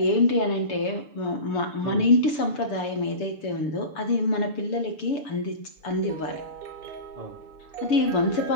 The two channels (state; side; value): late; right; 6.9 ms